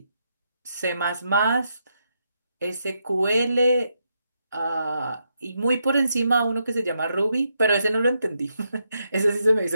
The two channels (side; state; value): both; inverted; correlation -0.81